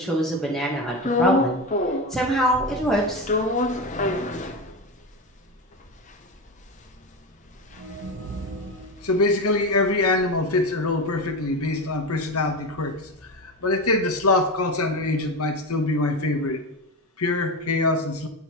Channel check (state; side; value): normal; both; correlation 0.19